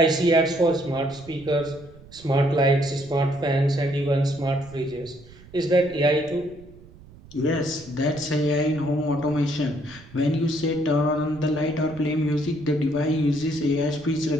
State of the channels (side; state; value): right; noise; rumble, 21 dB below the sound